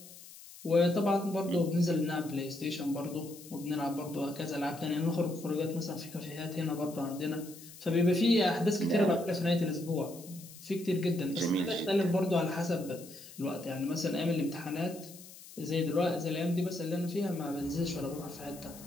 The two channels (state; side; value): noise; left; hiss, 17 dB below the sound